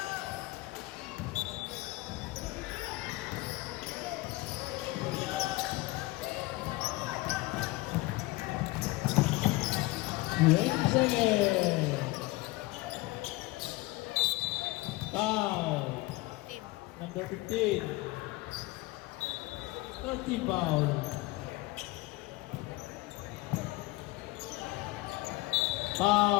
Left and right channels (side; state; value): right; quieter; 20.6 dB